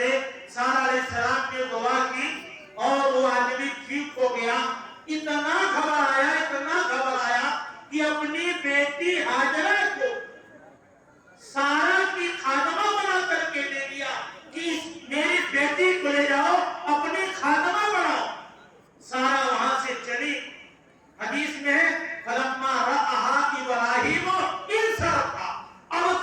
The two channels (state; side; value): identical; both; correlation 1.00